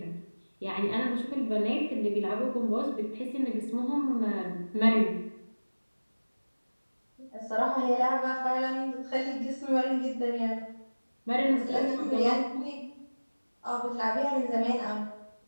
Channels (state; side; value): inverted; both; correlation -1.00